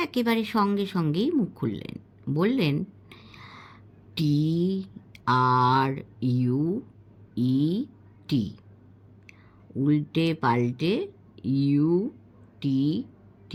একেবারে সঙ্গে সঙ্গেই মুখ খুললেন, বললেন, TRUET, উল্টে পাল্টে UTTER,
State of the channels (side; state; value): both; identical; correlation 1.00